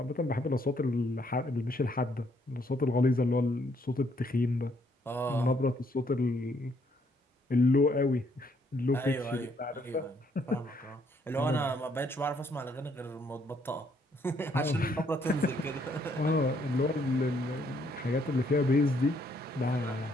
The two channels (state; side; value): normal; both; correlation 0.70